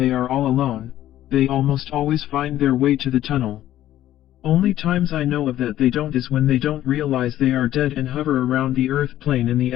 are all alone, they almost always find their way to the tunnel. Only times I know of that they don't is when they don't realize they are dead and hover around the earth plane in the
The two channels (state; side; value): quieter; right; 13.1 dB